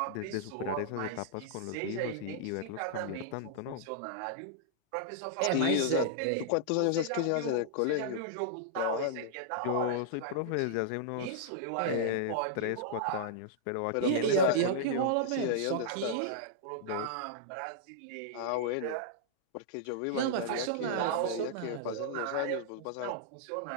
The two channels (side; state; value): both; different; correlation -0.02